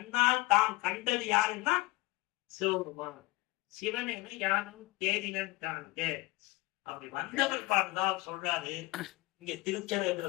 தாம் கண்டது யாருன்னா சிவபெருமான். சிவனேன யாரும் தேடினன் காண்க. அப்படி வந்தவர் பாடுதான் சொல்றாரு. இங்க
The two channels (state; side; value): quieter; right; 21.4 dB